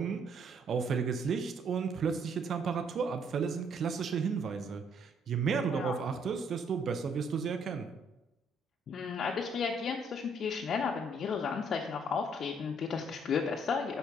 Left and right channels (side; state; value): both; normal; correlation 0.66